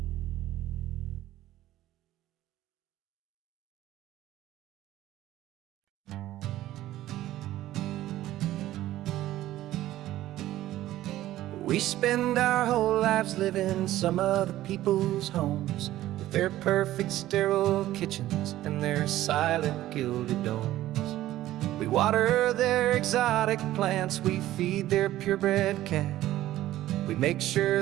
We spend our whole lives living some other people's homes, with their perfect sterile kitchens and their silent gilded domes. We water their exotic plants, we feed their purebred cat. We make sure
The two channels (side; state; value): left; quieter; 14.5 dB